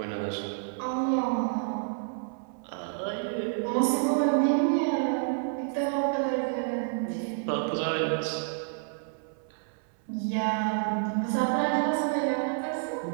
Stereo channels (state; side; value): silent; left; 58 dB below the other